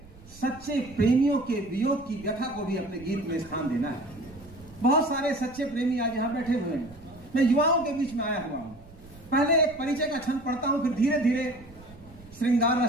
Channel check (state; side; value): noise; right; rumble, 21 dB below the sound